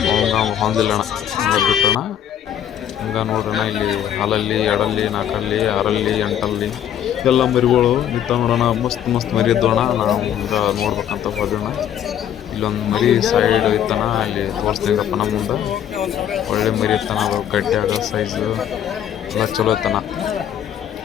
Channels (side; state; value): right; quieter; 10.1 dB